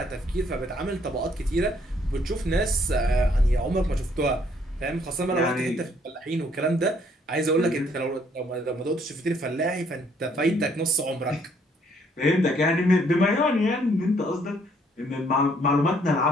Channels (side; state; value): both; normal; correlation 0.66